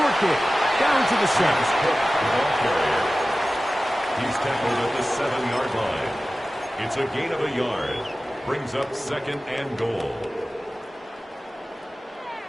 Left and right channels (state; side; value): normal; both; correlation 0.96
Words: kick down to the 7. He's tackled at the 7-yard line. It's a gain of a yard. Brings up second and goal.